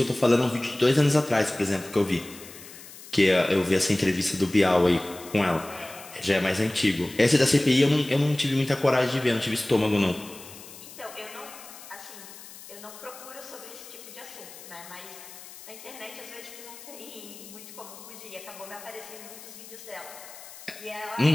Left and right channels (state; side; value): noise; left; hiss, 16 dB below the sound